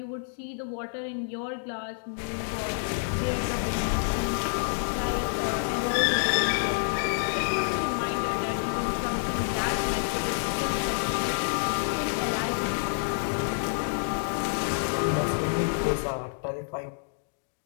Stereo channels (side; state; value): right; silent; digital silence